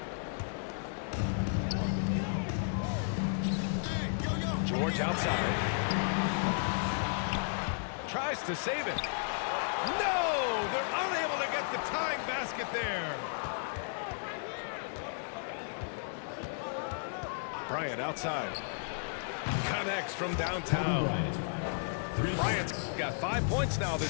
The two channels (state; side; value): silent; right; digital silence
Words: George outside. Tries to save it. No! They're unable to get the tying basket there. Bryant outside. Connects from downtown. Bryant's got 5 points now